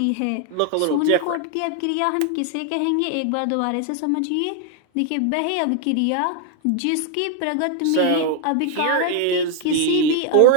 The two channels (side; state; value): both; different; correlation 0.00